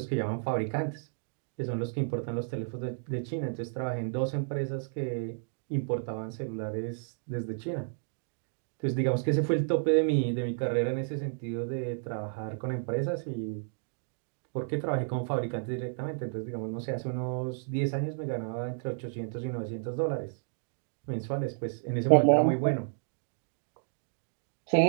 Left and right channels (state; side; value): silent; left; digital silence